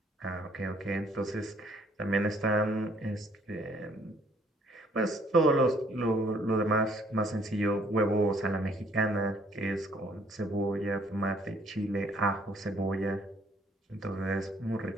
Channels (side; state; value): both; normal; correlation 0.63